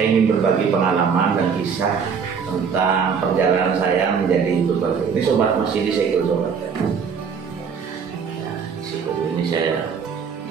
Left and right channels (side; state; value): left; quieter; 6.3 dB